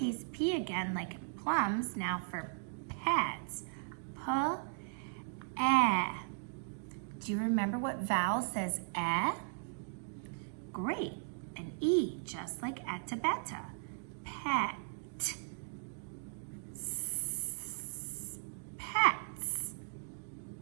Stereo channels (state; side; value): silent; left; digital silence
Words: p again, like in plums. Now for pets. P-e. Do you remember what vowel says e? Great. An E, just like etabeta. Pet. Pets.